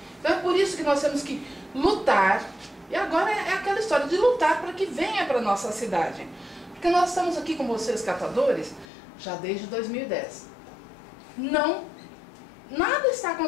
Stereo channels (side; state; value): right; drops out; at 8.8 s